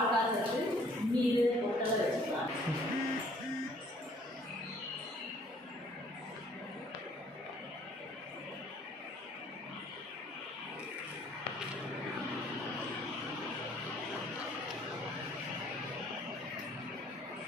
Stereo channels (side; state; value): both; normal; correlation 0.59